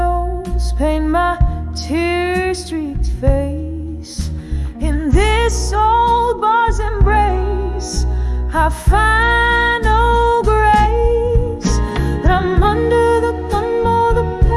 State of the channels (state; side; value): identical; both; correlation 1.00